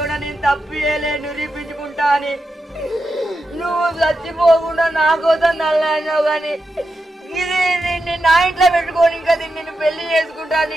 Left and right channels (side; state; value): both; normal; correlation 0.88